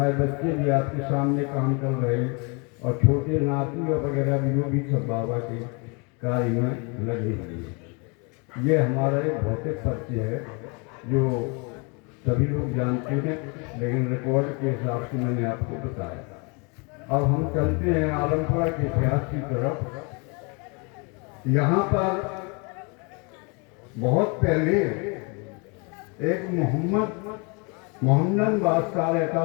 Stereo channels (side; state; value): right; quieter; 32.5 dB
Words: बच्चे भी आपके सामने काम कर रहे हैं और छोटे नाती वगैरह भी वो भी सब बाबा के कार्य में लगे हुए हैं। ये हमारा एक भौतिक परिचय है जो सभी लोग जानते हैं, लेकिन रिकॉर्ड के हिसाब से मैंने आपको बताया। अब हम चलते हैं आलमपुरा के इतिहास की तरफ। यहाँ पर बहुत पहले एक मोहम्मद बादशाह रहता